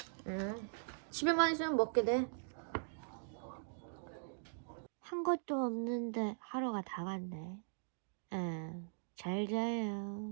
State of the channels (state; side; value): silent; left; digital silence